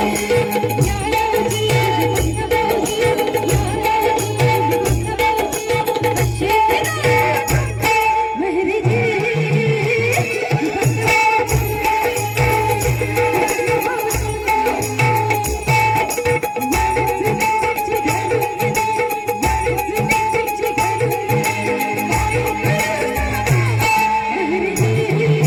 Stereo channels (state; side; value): identical; both; correlation 1.00